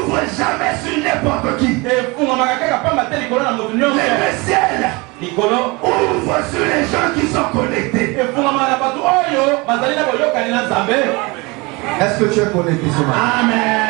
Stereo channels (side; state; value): left; quieter; 25.9 dB